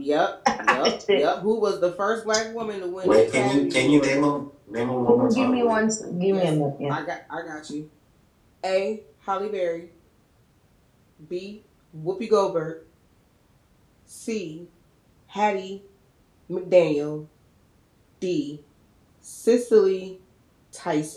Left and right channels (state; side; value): identical; both; correlation 1.00